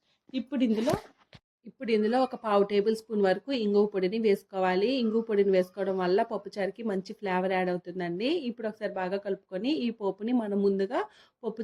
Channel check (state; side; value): identical; both; correlation 1.00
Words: ఇప్పుడు ఇందులో ఒక 1/2 టేబుల్ స్పూన్ వరకు ఇంగువ పొడిని వేసుకోవాలి. ఇంగువ పొడిని వేసుకోవడం వల్ల పప్పుచారుకి మంచి ఫ్లేవర్ యాడ్ అవుతుందండి. ఇప్పుడు ఒకసారి బాగా కలుపుకొని ఈ పోపుని మనం ముందుగా